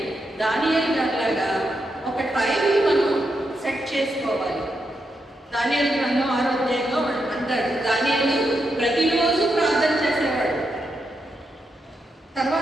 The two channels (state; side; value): normal; both; correlation 0.84